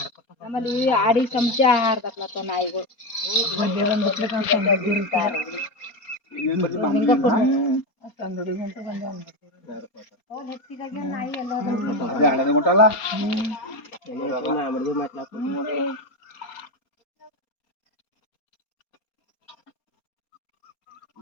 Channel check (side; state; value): right; late; 4.3 ms